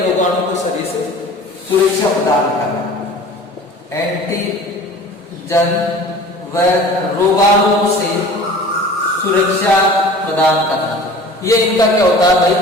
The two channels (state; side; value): normal; both; correlation 0.42